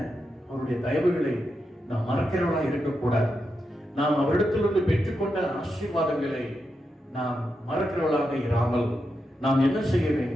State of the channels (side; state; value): both; normal; correlation 0.86